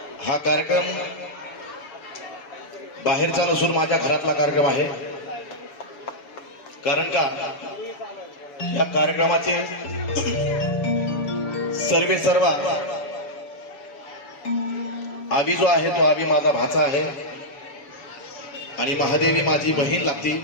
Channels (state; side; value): late; right; 7.0 ms